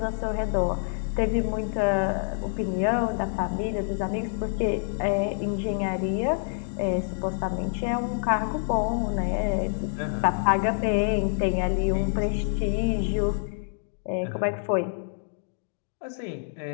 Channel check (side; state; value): right; silent; digital silence